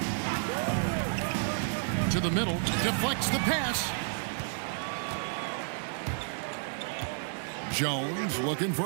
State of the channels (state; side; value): silent; left; digital silence